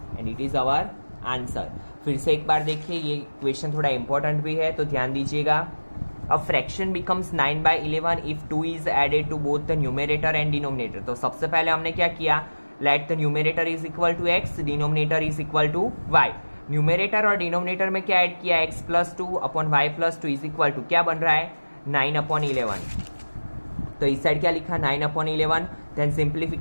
and it is our answer. फिर से एक बार देखिए, ये क्वेश्चन थोड़ा इंपॉर्टेंट भी है तो ध्यान दीजिएगा। A fraction becomes 9/11 if 2 is added to both the numerator and denominator. तो सबसे पहले हमने क्या किया? Let the numerator is equal to x, denominator is equal to y। Numerator और डिनोमिनेटर में क्या ऐड किया? x plus 2 upon y plus 2 is equal to क्या बन रहा है? 9/11। तो इस साइड क्या लिखा? 9/11। देन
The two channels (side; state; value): both; inverted; correlation -1.00